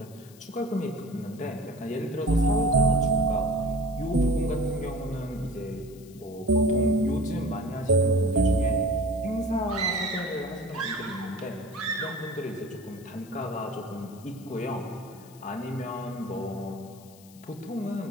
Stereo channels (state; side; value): noise; left; hiss, 24 dB below the sound